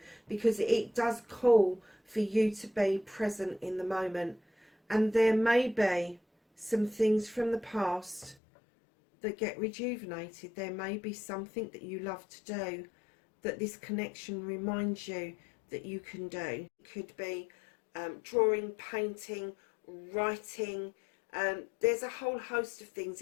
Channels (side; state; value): right; drops out; at 8.3 s